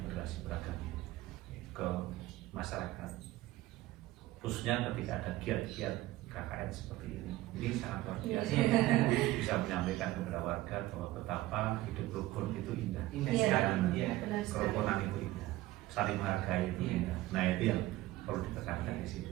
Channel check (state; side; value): quieter; left; 17.0 dB